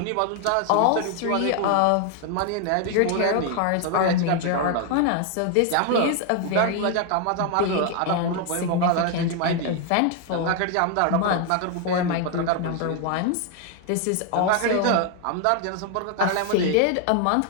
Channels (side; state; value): both; different; correlation 0.01